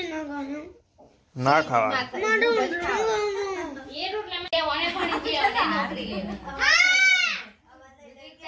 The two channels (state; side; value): identical; both; correlation 1.00